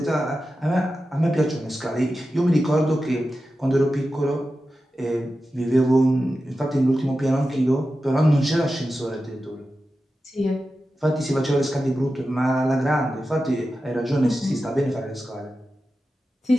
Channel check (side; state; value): both; normal; correlation 0.92